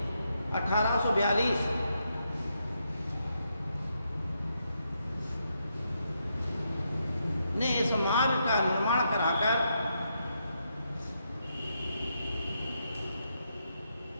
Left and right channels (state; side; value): inverted; both; correlation -0.80